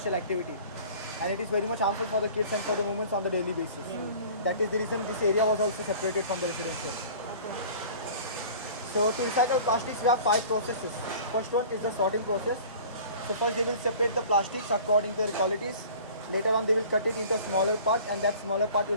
activity. And it is very much harmful for the kids and for the women on the daily basis. That is the reason this area was also separated from the residential. So to recycle plastics, we have 5 processes. First one is the sorting process. So first they will separate the plastics according to their qualities. Later on they will cut it into a smaller part, and that smaller part will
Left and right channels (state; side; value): inverted; both; correlation -0.44